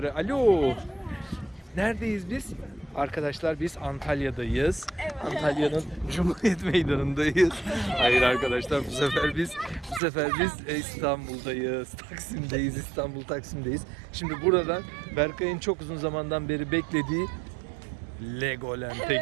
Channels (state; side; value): drops out; left; at 10.0 s